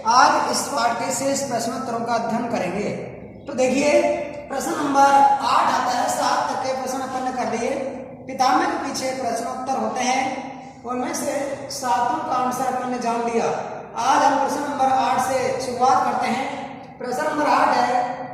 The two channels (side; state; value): both; identical; correlation 1.00